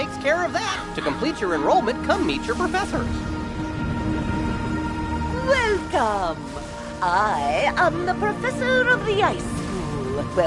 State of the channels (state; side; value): identical; both; correlation 1.00